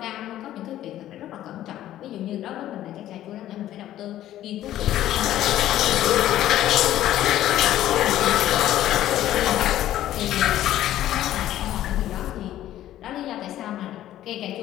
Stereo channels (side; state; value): right; quieter; 13.0 dB